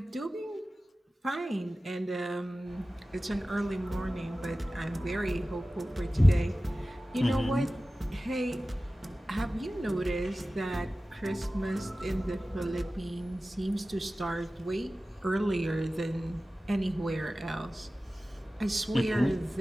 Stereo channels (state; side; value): normal; both; correlation 0.96